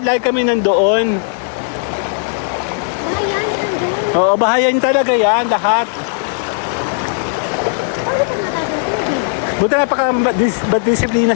kami nandoon. Bayan, nandun. Oo, bahayan talaga yan, lahat. Ano pa natatang tubig? Buti napaka-disiplina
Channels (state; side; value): silent; right; 68 dB below the other